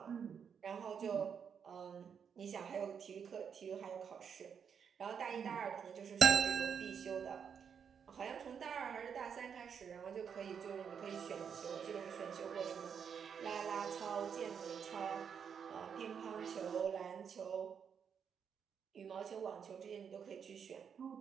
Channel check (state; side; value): quieter; left; 7.2 dB